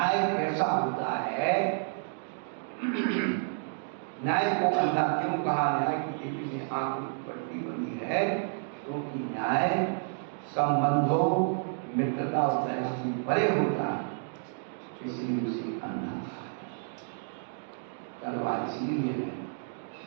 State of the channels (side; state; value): left; silent; digital silence